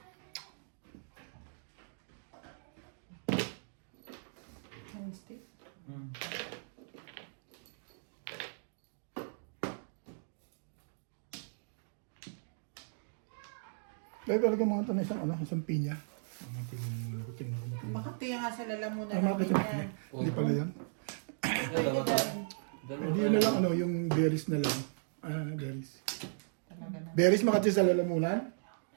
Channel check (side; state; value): left; silent; digital silence